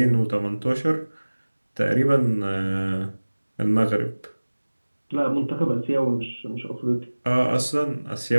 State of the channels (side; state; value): both; inverted; correlation -1.00